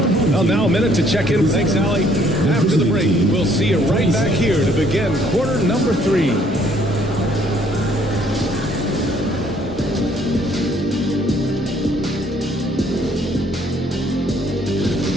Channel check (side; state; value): left; noise; hum, 24 dB below the sound